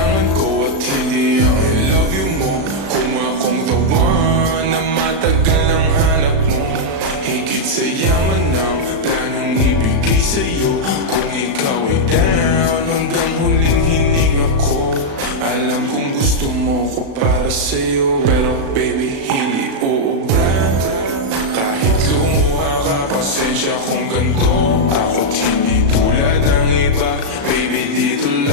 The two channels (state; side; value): late; left; 36 ms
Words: ko at hindi ang I love you mo. Kung akong the one na matagal ang hanap mo, higit sa yaman ng planong ibigay sa'yo. Kung ikaw ay down, hanggang huling hininga ko. Alam kong gusto mo ko para sa'yo, pero baby, hindi uubra. Kahit lumuha ka, pasensya kung ganito. Ako't hindi tulad ng iba. Baby, dito